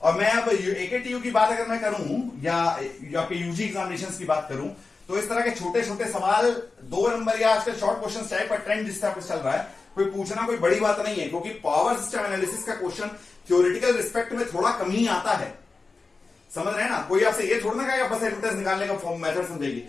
और मैं अब AKTU की बात अगर मैं करूं या आपके यूजी एग्जामिनेशंस की बात करूं, तो इस तरह के छोटे छोटे सवाल 2 नंबर या आजकल शॉर्ट क्वेश्चन टाइप का ट्रेंड जिस तरह चल रहा है, कोई पूछना कोई बड़ी बात नहीं है, क्योंकि पावर सिस्टम एनालिसिस का क्वेश्चन थ्योरेटिकल रिस्पेक्ट में थोड़ा कम ही आता है। समझ रहे हैं ना? कोई आपसे ये थोड़ा ना कहेगा बस एडवर्टाइज निकालने का फॉर्म मेथड समझेगी।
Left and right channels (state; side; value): quieter; right; 4.0 dB